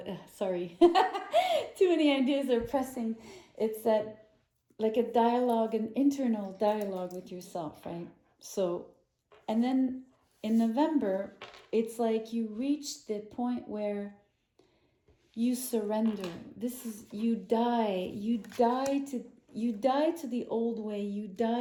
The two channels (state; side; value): identical; both; correlation 1.00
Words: sorry, too many ideas are pressing. It's that, like a dialogue, an internal dialogue with yourself, right? So, and then in November, it's like you reach the point where you surrender. This is, you die to the old way, you